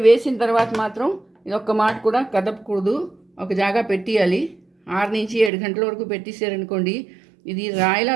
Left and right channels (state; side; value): drops out; left; at 5.5 s